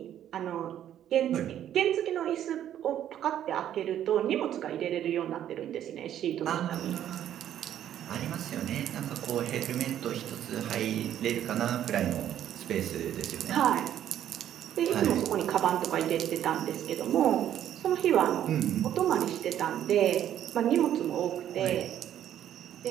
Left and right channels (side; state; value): left; quieter; 10.9 dB